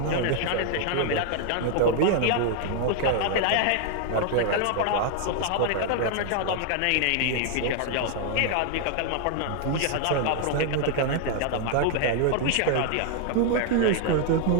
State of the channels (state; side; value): different; both; correlation 0.00